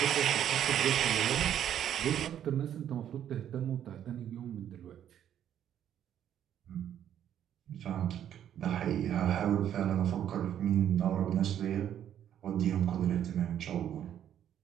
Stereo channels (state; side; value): quieter; left; 10.2 dB